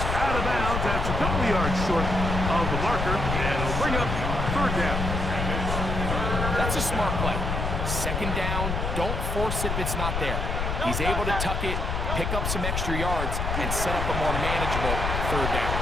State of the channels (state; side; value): noise; left; rumble, 1 dB below the sound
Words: out of bounds. That's a couple of yards short of the marker. And it'll bring up 3rd down. That's a smart play. 2nd down, don't force it if it's not there. He's able to tuck it, pick up some extra yards, and set up a more manageable 3rd down.